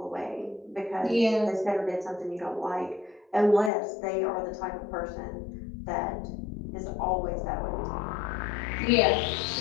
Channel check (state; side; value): drops out; right; at 3.7 s